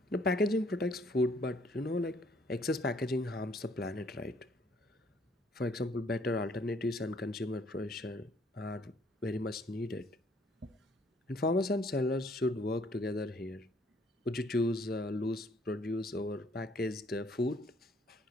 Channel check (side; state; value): both; normal; correlation 0.63